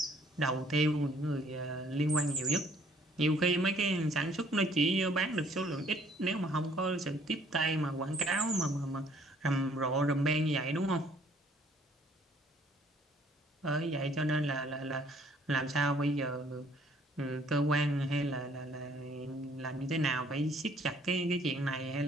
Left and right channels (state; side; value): normal; both; correlation 0.61